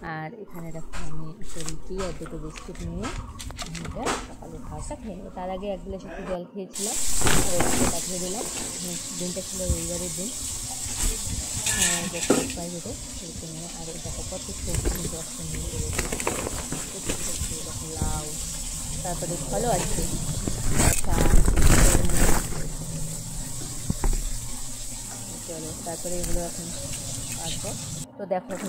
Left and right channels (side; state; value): both; identical; correlation 1.00